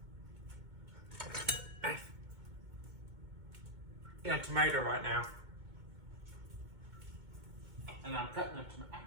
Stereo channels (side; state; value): left; late; 2.1 ms